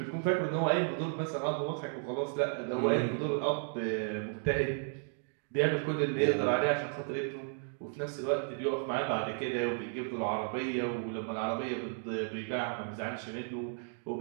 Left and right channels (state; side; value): silent; left; 55 dB below the other